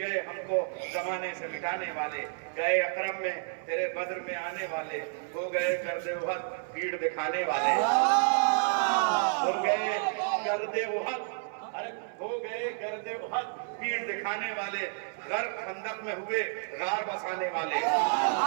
گئے ہم کو زمانے سے مٹانے والے، گئے اکرم میں تیرے بدر میں آنے والے. ہو گئے گرد احد بھیڑ دکھانے والے. ہو گئے گرد احد، ارے ہو گئے گرد احد بھیڑ دکھانے والے. غرق خندق میں ہوئے غار بسانے والے.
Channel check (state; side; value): silent; left; 57 dB below the other